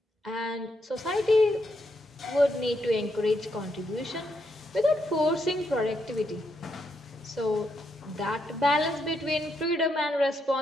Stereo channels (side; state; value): both; normal; correlation 0.79